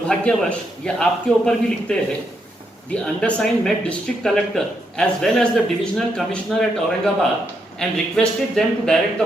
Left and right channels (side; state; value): both; normal; correlation 0.79